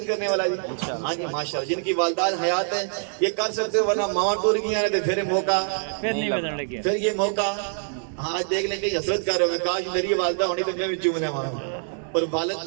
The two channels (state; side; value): silent; left; digital silence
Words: کرنے والا جی؟ ہاں جی ماشاءاللہ. جن کی والدات حیات ہیں یہ کر سکتے ہو, ورنہ ماں ٹور گیا تو پھر موقع پھر یہ موقع. ہاں آج دیکھ لیں کہ حسرت کر رہے ہوں, کاش میری والدہ ہونی تو میں بھی چومنے والا. اور والد